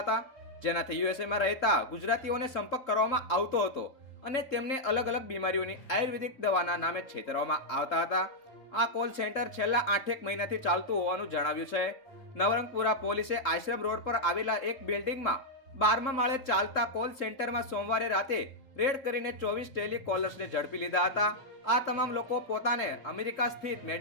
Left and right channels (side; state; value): right; late; 3.7 ms